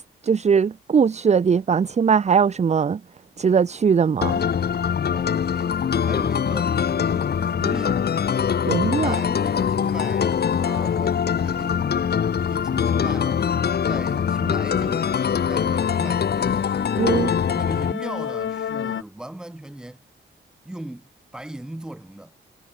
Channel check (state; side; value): normal; both; correlation 0.33